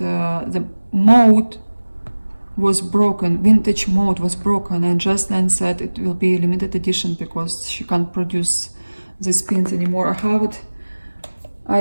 mode was broken, vintage mode was broken, and Just Nan said it will be a limited edition because she can't produce these pins anymore. I have it.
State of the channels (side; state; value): both; inverted; correlation -1.00